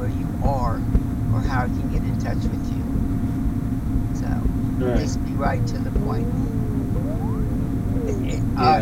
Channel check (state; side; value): identical; both; correlation 1.00